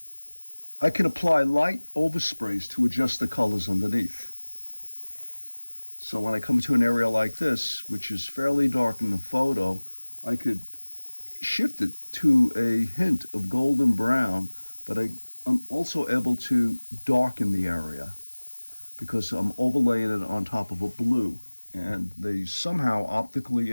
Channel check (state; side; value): inverted; both; correlation -1.00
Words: I can apply light oversprays to adjust the colors underneath. So when I come to an area like this, which is fairly dark in the photo, I could shift it to a hint of golden brown, but I'm also able to darken the area because I'm overlaying it on top of a blue, and they somehow optically